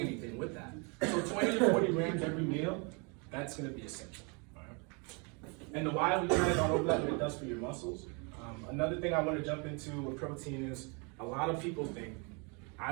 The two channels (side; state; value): left; quieter; 32.8 dB